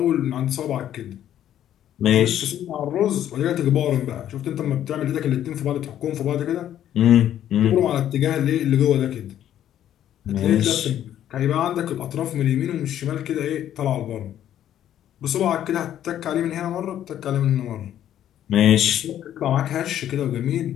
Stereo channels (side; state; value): right; quieter; 11.1 dB